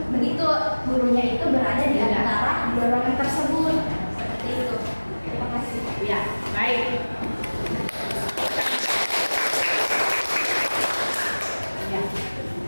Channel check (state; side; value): inverted; both; correlation -1.00